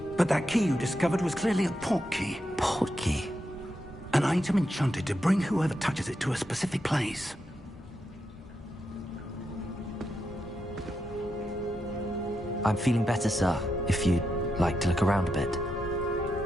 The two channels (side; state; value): both; normal; correlation 0.84